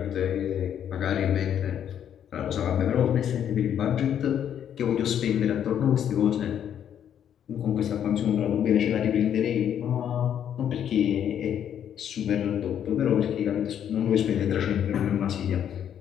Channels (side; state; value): right; quieter; 9.4 dB